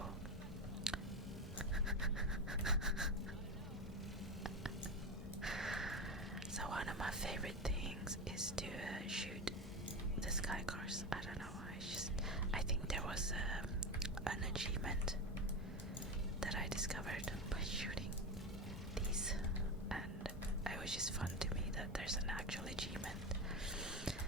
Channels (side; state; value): both; normal; correlation 0.19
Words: so one of my favorite things is to shoot the Skycars. I don't know why. I think there was an achievement that I discovered by shooting these, and it was just fun to me that there's an actual achievement